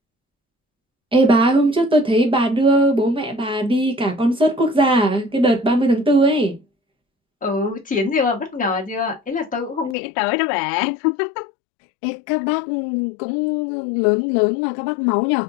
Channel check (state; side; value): drops out; right; at 10.0 s